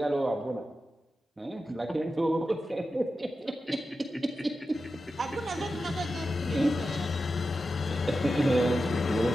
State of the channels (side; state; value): both; normal; correlation 0.91